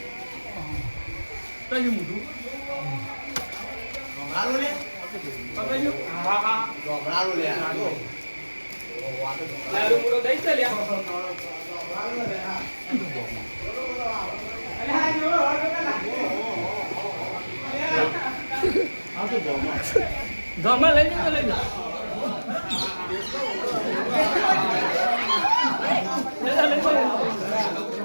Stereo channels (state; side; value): inverted; both; correlation -1.00